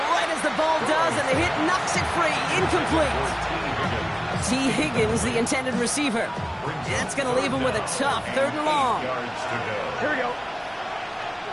right as the ball does, and the hit knocks it free. Incomplete. T. Higgins, the intended receiver. That's going to leave him with a tough 3rd and long. Here we go.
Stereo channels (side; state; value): both; identical; correlation 1.00